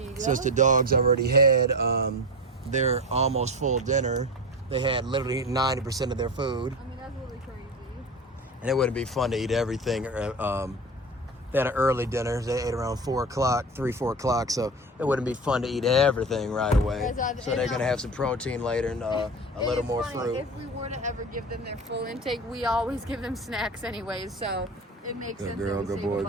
go. Since the dogs already had their almost full dinner, they had literally 90% of their food. I mean, that's really crazy. And it wouldn't be fun to eat everything. They had an early dinner. They ate around 4 o'clock, 3, 4 o'clock. So it wouldn't be fun to eat everything right away. So they're going to have some protein later and a little more fruit. If we were to ever give them their full intake, we always give them snacks anyways. So it makes sense. Good girl, that we good save a boy,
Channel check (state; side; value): normal; both; correlation 0.25